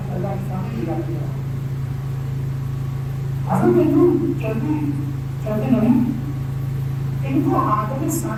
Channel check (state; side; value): identical; both; correlation 1.00